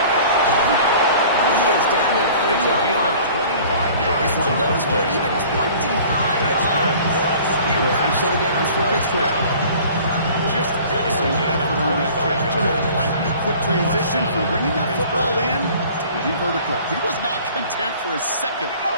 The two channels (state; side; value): inverted; both; correlation -0.48